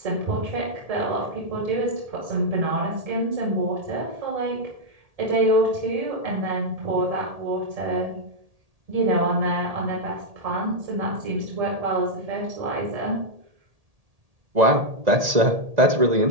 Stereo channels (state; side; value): late; left; 1.8 ms